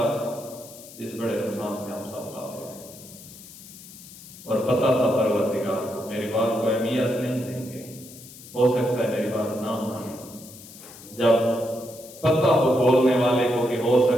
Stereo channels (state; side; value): noise; left; hiss, 18 dB below the sound